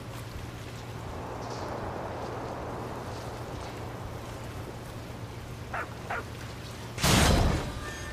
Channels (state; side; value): identical; both; correlation 1.00